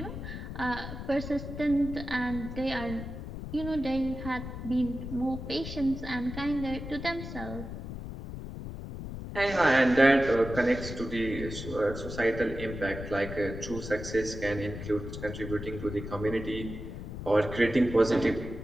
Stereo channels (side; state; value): left; noise; rumble, 8 dB below the sound